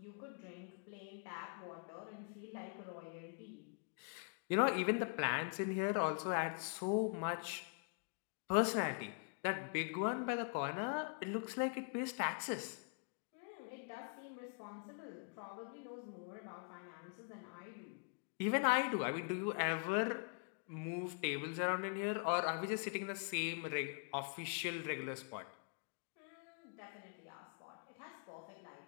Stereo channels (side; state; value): right; quieter; 39.4 dB